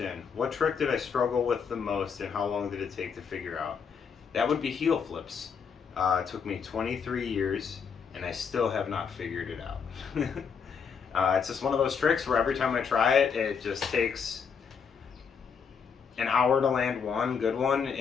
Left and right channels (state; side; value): quieter; right; 6.3 dB